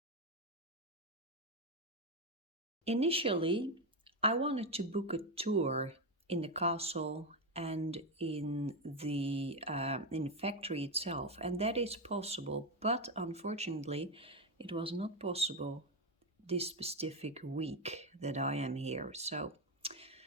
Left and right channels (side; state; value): both; normal; correlation 0.10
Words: Initially, I wanted to book a tour in the castle and in the factory itself, and that is possible, but unfortunately it was not possible this specific week that I am here. So,